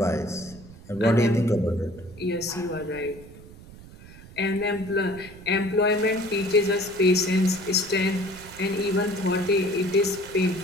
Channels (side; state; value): right; noise; rumble, 19 dB below the sound